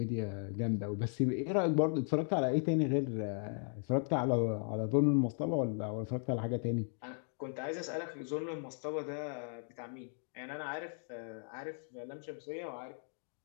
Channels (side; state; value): right; silent; 53 dB below the other